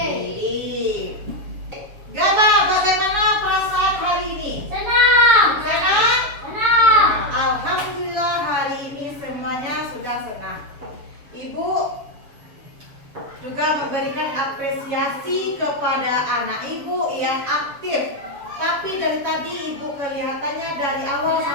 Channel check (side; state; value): left; late; 7.2 ms